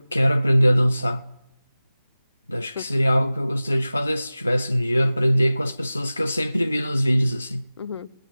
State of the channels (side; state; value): both; inverted; correlation -0.98